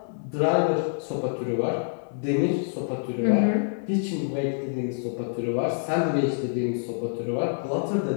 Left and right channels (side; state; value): right; silent; digital silence